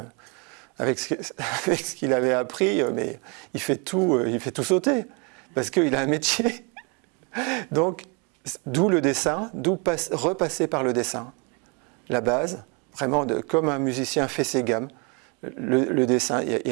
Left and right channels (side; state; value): left; quieter; 32.4 dB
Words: avec ce qu'il avait appris, mais il fait tout sauter, parce qu'il a un métier. Donc, d'où le dessin, repasser par le dessin, la base. Vraiment, comme un musicien fait ses gammes, le dessin, il y